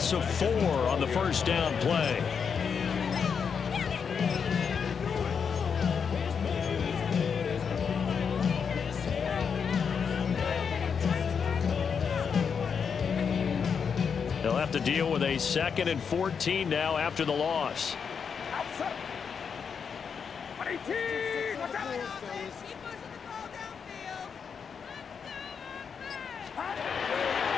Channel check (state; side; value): quieter; right; 6.5 dB